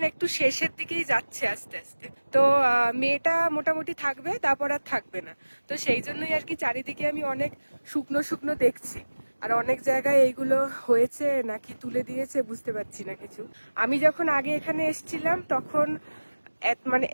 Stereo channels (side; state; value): both; inverted; correlation -1.00